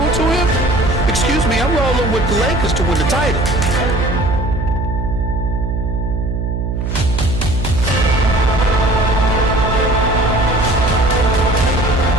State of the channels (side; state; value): right; noise; hum, 2 dB below the sound